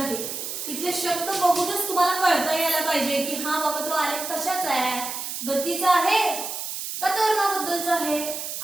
इथले शब्द बघूनच तुम्हाला कळता यायला पाहिजे की हा बाबा तो आलेख कशाचा आहे, गतीचा आहे का त्वरणाबद्दलचा आहे.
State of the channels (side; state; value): right; noise; hiss, 6 dB below the sound